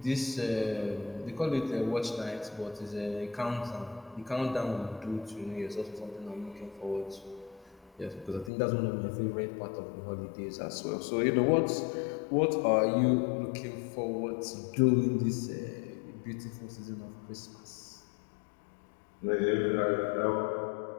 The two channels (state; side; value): drops out; right; at 8.5 s